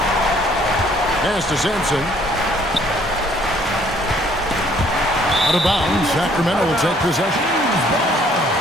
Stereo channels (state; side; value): normal; both; correlation 0.62